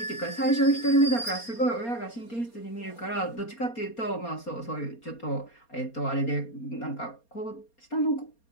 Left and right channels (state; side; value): late; right; 4.3 ms